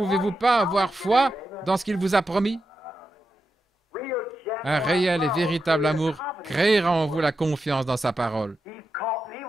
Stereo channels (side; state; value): both; normal; correlation 0.88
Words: pas avoir foi dans ce qu'il vous a promis? Un réel et véritable amour créera en vous la confiance dans sa parole.